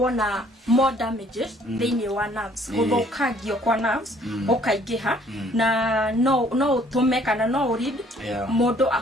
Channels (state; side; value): normal; both; correlation 0.60